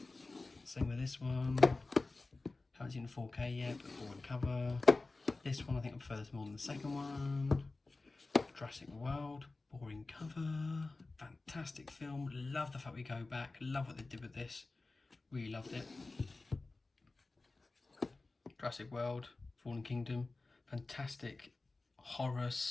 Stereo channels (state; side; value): quieter; right; 3.4 dB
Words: Same with this one. Haven't seen the 4K yet, but boring cover. This one I think I prefer this more than the second one. Jurassic World, boring cover. Fantastic film, love the fact we go back, love what they did with this. Really loved it. Jurassic World, Fallen Kingdom, fantastic horror